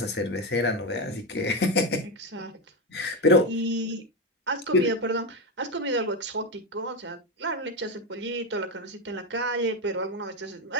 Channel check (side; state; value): both; normal; correlation 0.11